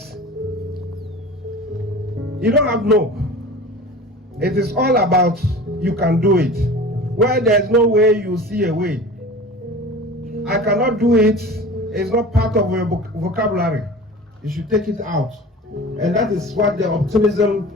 you don't have no. It is all about you can do it. Where there's no way, you see a way. I cannot do it. It's not part of your vocabulary. You should take it out. And that is what the optimism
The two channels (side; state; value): both; normal; correlation 0.38